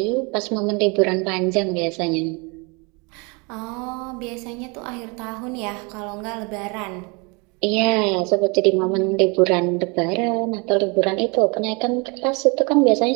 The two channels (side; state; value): left; quieter; 30.2 dB